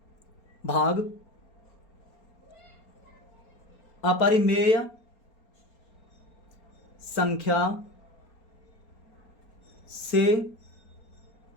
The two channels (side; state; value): right; late; 4.3 ms